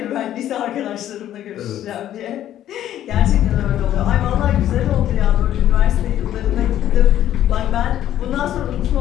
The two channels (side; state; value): right; quieter; 11.8 dB